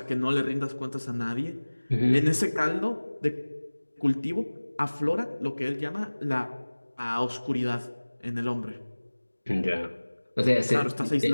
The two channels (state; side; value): inverted; both; correlation -1.00